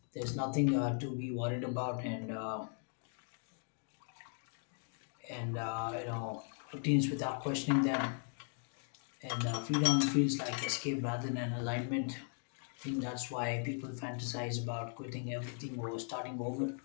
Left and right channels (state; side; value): silent; right; 52 dB below the other